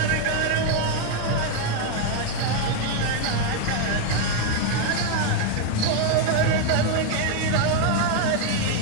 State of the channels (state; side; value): different; both; correlation 0.01